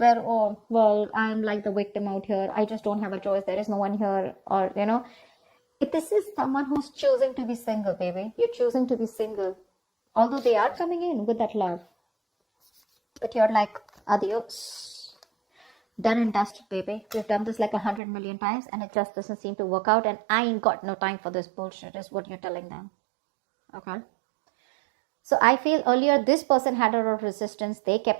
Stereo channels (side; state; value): left; drops out; at 18.0 s